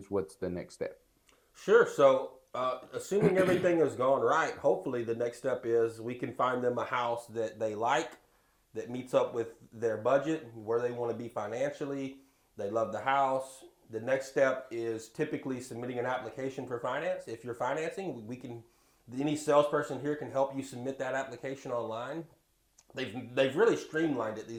what's the next step? Sure. So, assuming everything has gone right, hopefully the next step is we can find them a house that they like, that meets up with their budget, where they want to be financially. They love the house. The next step is typically submitting an application for finance. If you're financing, any salesperson here can help you submit that application online. They've really streamlined it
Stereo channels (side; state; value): both; identical; correlation 1.00